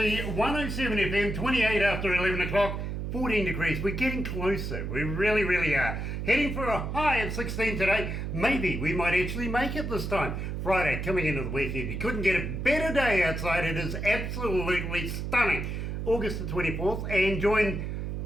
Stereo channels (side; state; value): right; noise; hum, 4 dB below the sound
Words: 107 FM, 28 after 11 o'clock, 14 degrees. We're getting closer, we really, really are. Heading for a high of 16 today. Maybe we might actually make it this time. Friday, coming into the weekend. You couldn't get a better day outside. It is absolutely stunning. August the 24th, and join